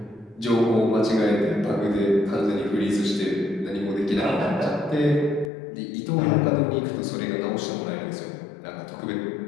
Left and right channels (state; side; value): drops out; right; at 5.5 s